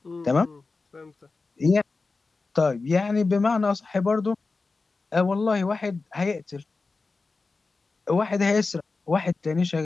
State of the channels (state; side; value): quieter; right; 3.9 dB